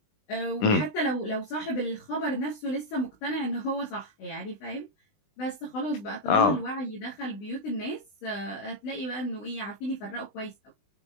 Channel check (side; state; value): right; late; 20 ms